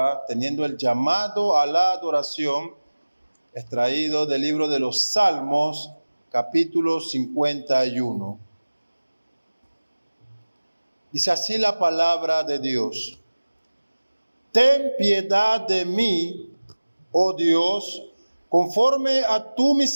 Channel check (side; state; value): both; inverted; correlation -1.00